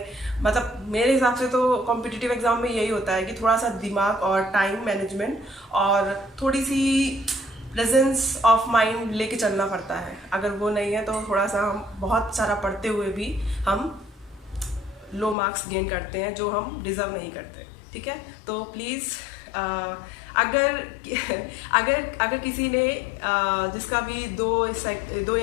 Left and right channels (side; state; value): right; drops out; at 15.4 s